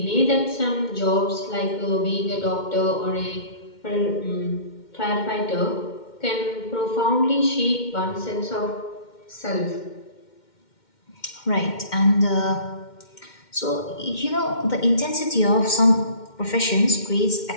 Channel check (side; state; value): right; late; 2.1 ms